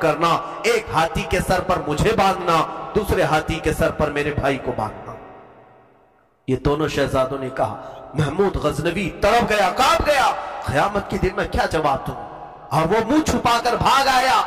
एक हाथी के सर पर मुझे बांधना, दूसरे हाथी के सर पर मेरे भाई को बांधना. ये दोनों शहजादों ने कहा. महमूद गजनवी तड़प गया, कांप गया, क़यामत के दिन में क्या जवाब दूं, और वो मुंह छुपाकर भाग आया.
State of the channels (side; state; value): both; identical; correlation 1.00